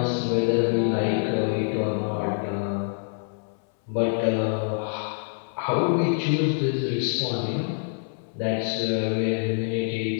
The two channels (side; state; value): right; silent; 61 dB below the other